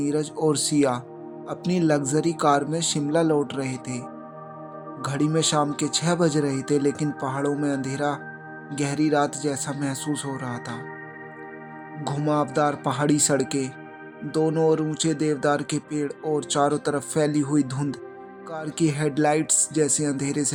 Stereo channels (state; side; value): identical; both; correlation 1.00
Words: और सिया अपनी लग्जरी कार में शिमला लौट रहे थे। घड़ी में शाम के 6 बज रहे थे, लेकिन पहाड़ों में अंधेरा गहरी रात जैसा महसूस हो रहा था। घुमावदार पहाड़ी सड़कें, दोनों ओर ऊंचे देवदार के पेड़ और चारों तरफ फैली हुई धुंध कार की हेडलाइट्स जैसे अंधेरे